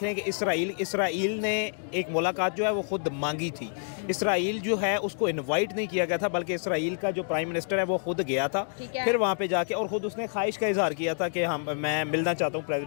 रहे हैं कि इसराइल ने एक मुलाकात जो है वो खुद मांगी थी। इसराइल जो है उसको इनवाइट नहीं किया गया था, बल्कि इसराइल का जो प्राइम मिनिस्टर है वो खुद गया था, फिर वहाँ पे जाके, और खुद उसने ख्वाहिश का इजहार किया था कि मैं मिलना चाहता हूँ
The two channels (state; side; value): silent; right; digital silence